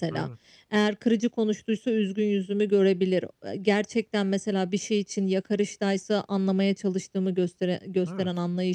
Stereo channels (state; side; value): identical; both; correlation 1.00